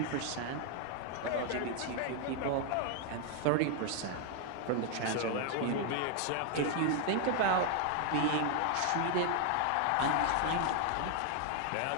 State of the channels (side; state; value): both; different; correlation 0.00